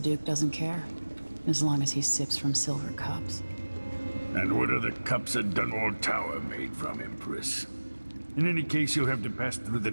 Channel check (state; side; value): inverted; both; correlation -1.00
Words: doesn't care, as long as he sips from silver cups. And what are the cups at Dunwall Tower made from, Empress? In any case, you'll have to pass through the